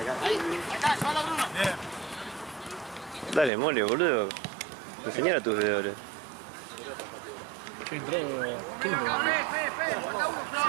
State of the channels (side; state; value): left; drops out; at 3.5 s